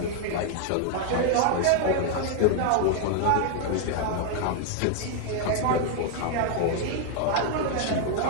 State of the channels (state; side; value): different; both; correlation 0.00